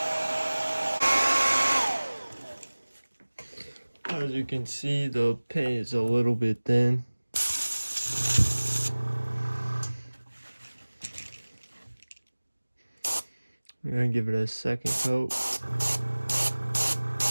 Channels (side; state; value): both; inverted; correlation -1.00